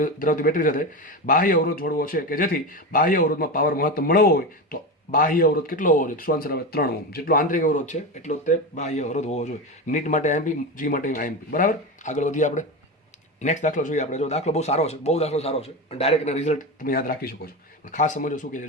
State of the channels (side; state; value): both; normal; correlation 0.20